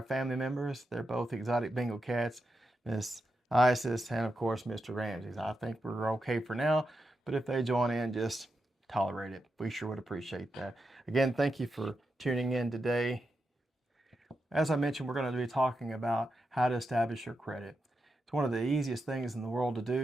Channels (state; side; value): normal; both; correlation 0.87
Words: family members. They're both exotic Bengal cats, Miss Isis and, of course, Mr. Ramses. I think we're okay for now, but if they join in, just tolerate it. We sure would appreciate that. Again, thank you for tuning in today. As I mentioned, we're going to be talking about how to establish your credit. It's one of the easiest things in the world to